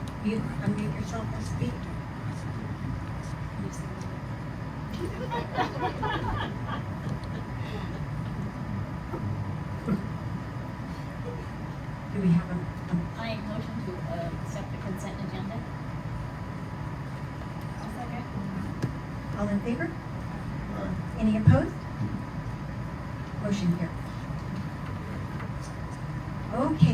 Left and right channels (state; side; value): identical; both; correlation 1.00